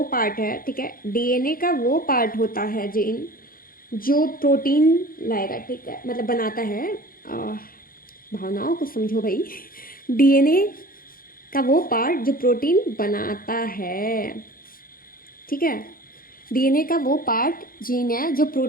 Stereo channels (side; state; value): right; late; 0.42 ms